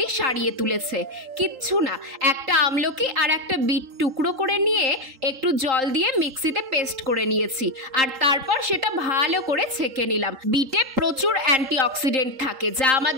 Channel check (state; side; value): late; left; 3.8 ms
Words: সারিয়ে তুলেছে। কিচ্ছু না, একটা আমলকি আর একটা বিট টুকরো করে নিয়ে একটু জল দিয়ে মিক্সিতে পেস্ট করে নিয়েছি, আর তারপর সেটা ভালো করে ছেঁকে নিলাম। বিটে প্রচুর অ্যান্টিঅক্সিডেন্ট থাকে যা